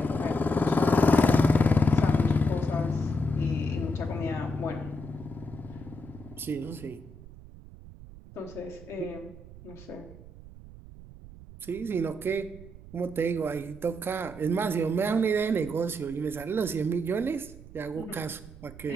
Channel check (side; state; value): right; noise; rumble, 17 dB below the sound